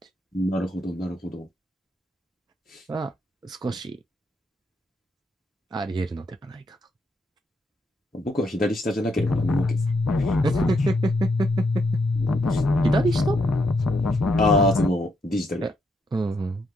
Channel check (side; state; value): both; normal; correlation 0.77